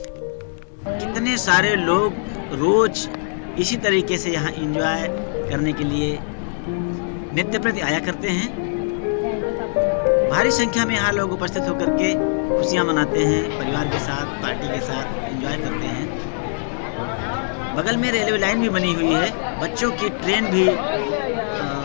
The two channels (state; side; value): silent; right; digital silence